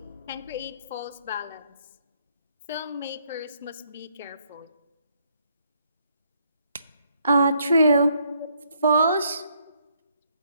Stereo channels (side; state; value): both; inverted; correlation -0.71